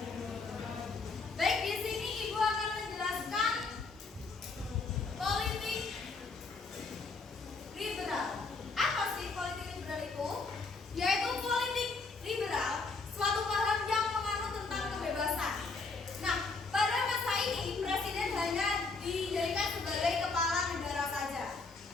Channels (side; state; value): right; quieter; 4.1 dB